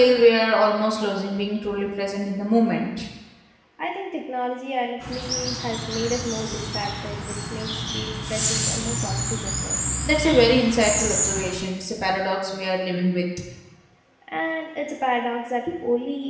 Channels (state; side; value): identical; both; correlation 1.00